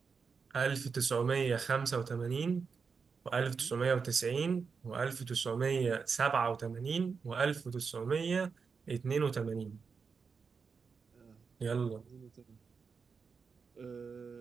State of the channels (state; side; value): quieter; left; 5.4 dB